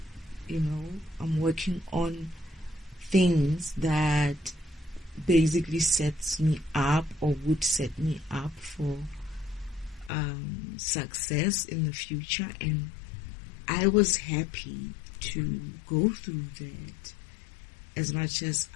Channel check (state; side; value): drops out; right; at 10.1 s